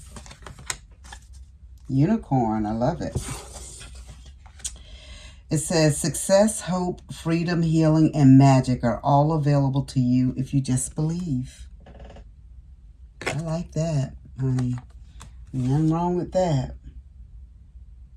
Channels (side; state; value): both; identical; correlation 1.00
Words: Unicorn. I love it. It says, success, hope, freedom, healing, and magic are all available to you if you just believe. I like that, honey. Nothing wrong with that.